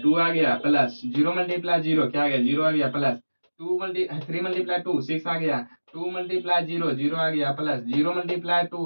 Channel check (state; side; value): inverted; both; correlation -1.00